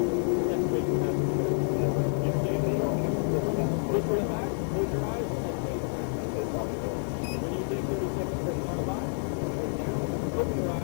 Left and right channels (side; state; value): right; silent; 59 dB below the other